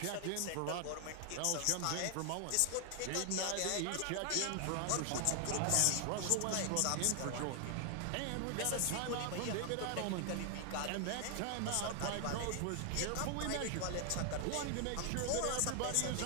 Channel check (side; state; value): both; different; correlation 0.00